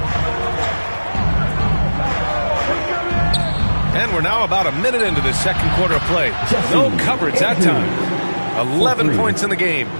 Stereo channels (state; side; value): inverted; both; correlation -1.00